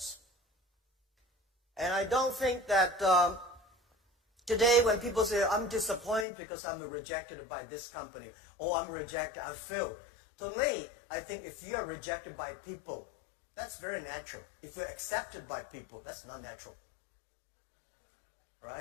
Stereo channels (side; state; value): right; drops out; at 6.2 s